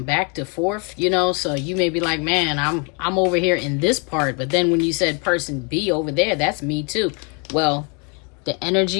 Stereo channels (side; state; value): right; quieter; 34.6 dB